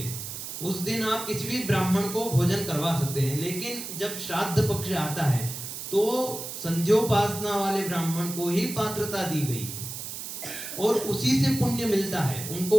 उस दिन आप किसी भी ब्राह्मण को भोजन करवा सकते हैं। लेकिन जब श्राद्ध पक्ष आता है तो संध्योपासना वाले ब्राह्मण को ही पात्रता दी गई है और उसी से पुण्य मिलता है,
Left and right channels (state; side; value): noise; right; hiss, 8 dB below the sound